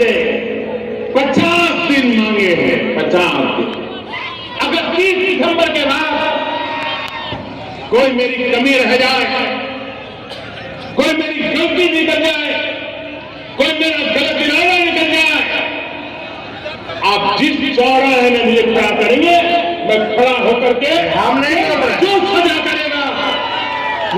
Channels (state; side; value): identical; both; correlation 1.00